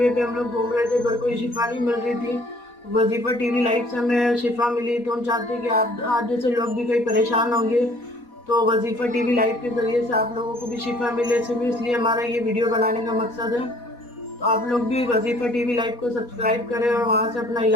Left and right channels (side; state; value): right; late; 4.1 ms